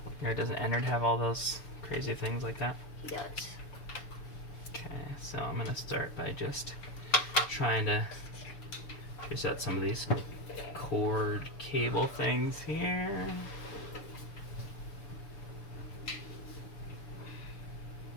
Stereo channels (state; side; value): late; right; 6.9 ms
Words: Or doesn't Ennard have all those crazy things like that? He does. Okay, so I'm gonna start by just trying to trace out some of these cord cable things here.